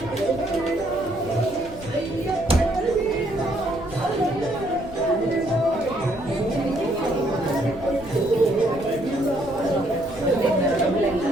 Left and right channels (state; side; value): noise; left; rumble, 15 dB below the sound